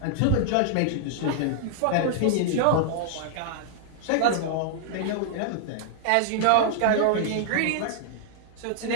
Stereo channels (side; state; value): both; different; correlation -0.01